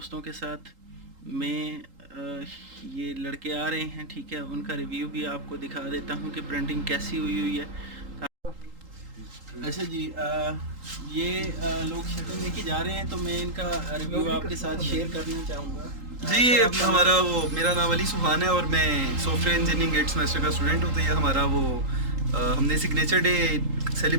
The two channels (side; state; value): left; late; 3.8 ms